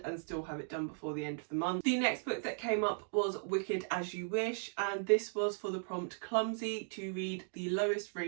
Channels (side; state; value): left; silent; digital silence